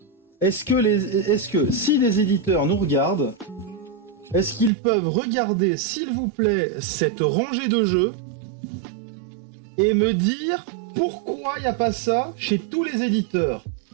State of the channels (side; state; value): left; drops out; at 4.7 s